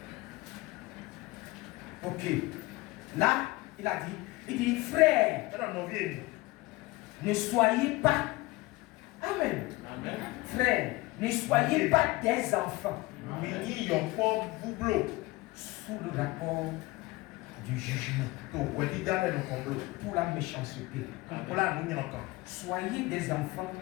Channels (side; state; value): right; quieter; 21.1 dB